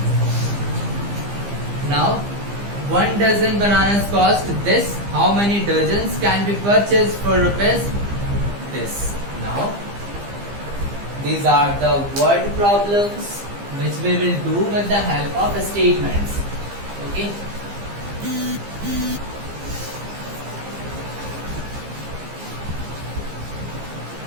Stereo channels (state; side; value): late; left; 15 ms